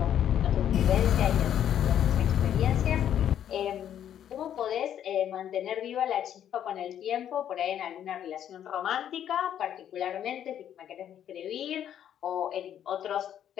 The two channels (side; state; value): right; quieter; 10.1 dB